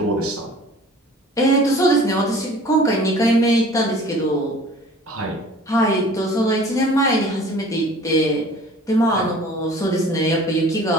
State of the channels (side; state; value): both; normal; correlation 0.47